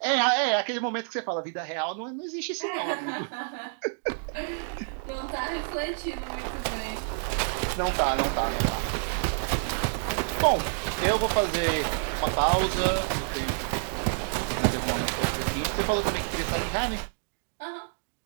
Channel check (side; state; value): left; silent; digital silence